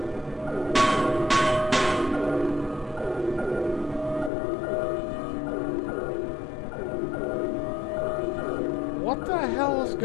What the hell is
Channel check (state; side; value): drops out; right; at 4.3 s